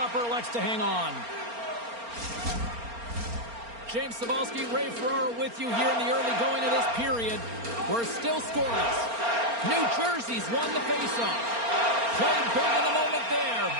elects to hang on. James Cybulski, Ray Ferraro with you here in the early going of this period. We're still scoreless. New Jersey's won the faceoff. Played big in the moment there.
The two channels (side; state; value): left; late; 4.3 ms